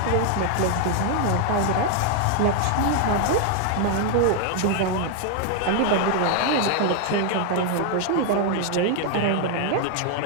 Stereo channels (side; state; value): both; different; correlation 0.00